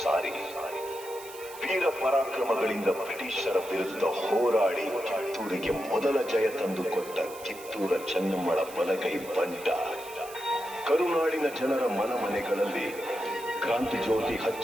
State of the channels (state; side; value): noise; right; hiss, 16 dB below the sound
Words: ಸಾರಿ ವೀರ ಪರಾಕ್ರಮಗಳಿಂದ ಬ್ರಿಟಿಷರ ವಿರುದ್ಧ ಹೋರಾಡಿ ಕಿತ್ತೂರಿಗೆ ಮೊದಲ ಜಯ ತಂದುಕೊಟ್ಟ ಕಿತ್ತೂರ ಚೆನ್ನಮ್ಮಳ ಬಲಗೈ ಬಂಟ ಕರುನಾಡಿನ ಜನರ ಮನಮನೆಗಳಲ್ಲಿ ಕ್ರಾಂತಿ ಜ್ಯೋತಿ